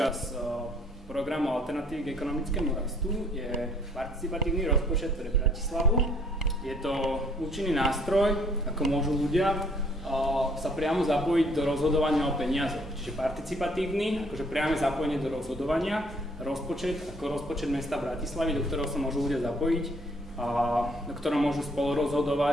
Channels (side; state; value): both; normal; correlation 0.62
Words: programu Alternatívy k ekonomickému rastu, je participatívny rozpočet pre Bratislavu. Je to účinný nástroj, ako môžu ľudia sa priamo zapojiť do rozhodovania o peniazoch. Čiže participatívny, akože priame zapojenie do rozhodovania, rozpočet ako rozpočet mesta Bratislavy, do ktorého sa môžu ľudia zapojiť, do ktorého môžu spolu